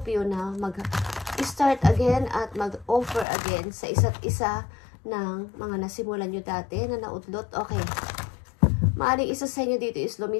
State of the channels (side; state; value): right; drops out; at 3.2 s